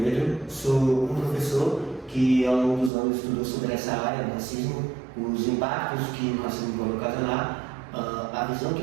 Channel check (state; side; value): drops out; left; at 2.9 s